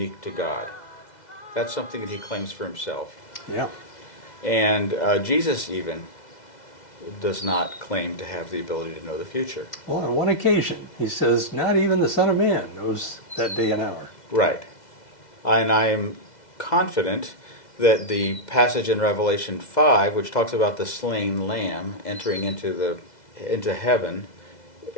to God. That's something that he claims for himself. Yeah. And Jesus even does not claim to have the ability to know the future. Well, on one occasion, he says, not even the Son of Man knows that day and hour. Right. And I am confident that the passage in Revelation 5, which talks about the slain lamb entering into heaven,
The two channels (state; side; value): late; right; 2.0 ms